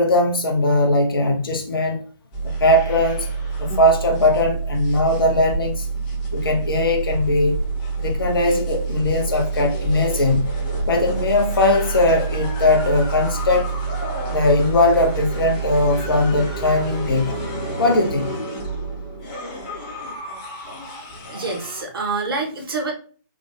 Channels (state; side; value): inverted; both; correlation -0.43